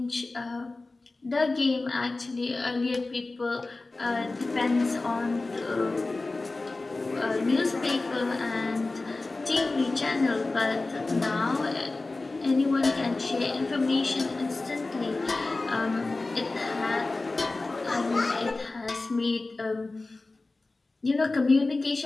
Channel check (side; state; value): right; quieter; 3.3 dB